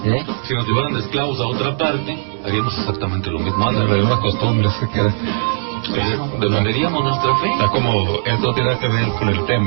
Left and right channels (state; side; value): silent; left; digital silence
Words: Si nos llevaran de esclavos a otra parte, haríamos exactamente lo mismo. Las mismas costumbres que quedan. Defenderíamos nuestra fe. Está como, esto tiene que ver con el